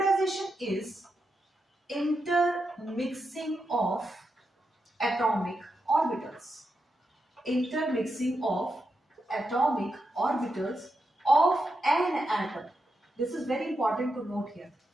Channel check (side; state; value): both; normal; correlation 0.86